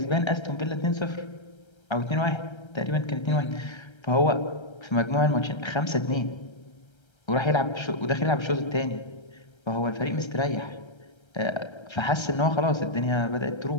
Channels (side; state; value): right; late; 1.3 ms